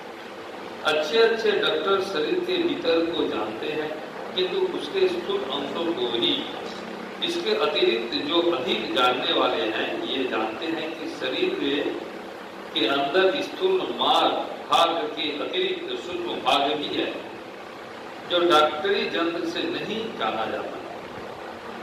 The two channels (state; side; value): identical; both; correlation 1.00